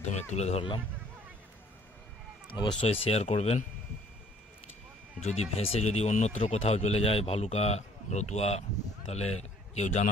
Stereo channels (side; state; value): both; normal; correlation 0.58